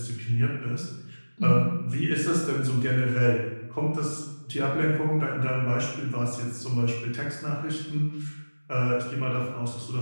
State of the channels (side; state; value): both; inverted; correlation -1.00